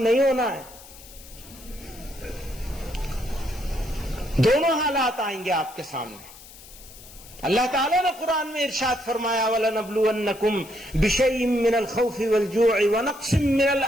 نہیں ہونا ہے۔ دونوں حالات آئیں گے آپ کے سامنے۔ اللہ تعالیٰ نے قرآن میں ارشاد فرمایا وَلَنَبْلُوَنَّكُمْ بِشَيْءٍ مِّنَ الْخَوْفِ وَالْجُوعِ وَنَقْصٍ مِّنَ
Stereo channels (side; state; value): left; noise; hiss, 19 dB below the sound